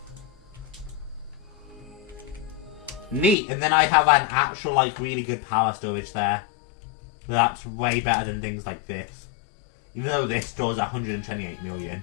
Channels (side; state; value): right; drops out; at 3.4 s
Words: Neat, and then I have an actual like really good power storage there. So that's way better than things like this. Even though this stores 128 million.